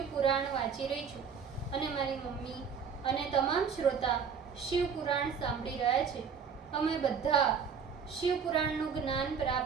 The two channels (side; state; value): left; quieter; 6.5 dB